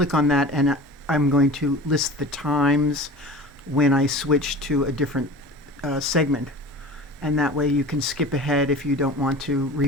on that, and I'm going to list the times when I switch to a different segment, and that way you can skip ahead if you don't want to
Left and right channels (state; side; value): normal; both; correlation 0.38